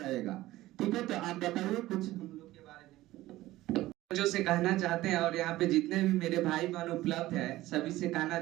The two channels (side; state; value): left; quieter; 16.6 dB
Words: ठीक है? तो आप बताइए कुछ हम लोग के बारे में जो से कहना चाहते हैं, और यहाँ पे जितने भी मेरे भाई बहन उपलब्ध है सभी से कहना